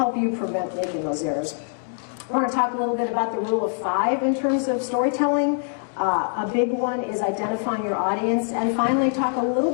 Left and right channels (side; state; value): right; silent; 63 dB below the other